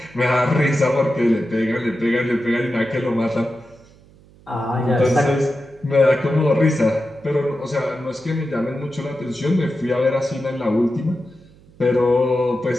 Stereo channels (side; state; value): right; noise; hum, 26 dB below the sound